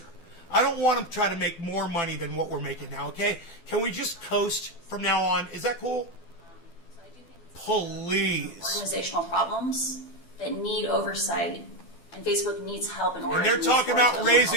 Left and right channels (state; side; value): late; right; 12 ms